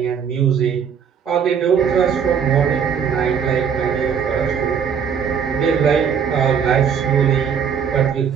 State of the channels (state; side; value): quieter; left; 7.2 dB